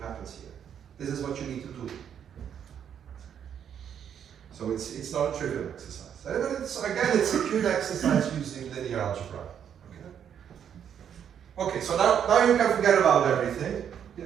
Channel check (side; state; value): left; quieter; 8.7 dB